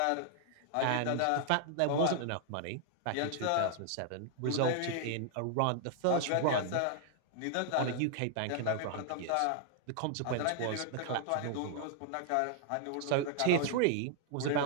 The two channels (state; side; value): different; both; correlation 0.00